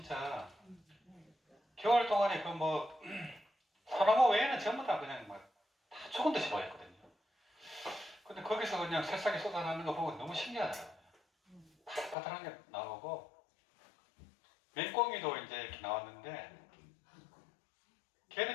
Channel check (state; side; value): drops out; right; at 12.2 s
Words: 겨울 동안에 그 뭐 소나무 외에는 전부 다 그냥 막 다 죽은 듯이 보였거든요. 근데 거기서 그냥 새싹이 쏟아나는 거 보고 너무 신기하더라고요. 파릇파릇한 게 나오고 맹꽁이도 이제 이렇게 나왔는데